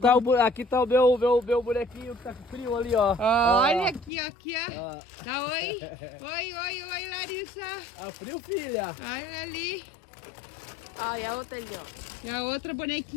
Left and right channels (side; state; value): right; drops out; at 4.1 s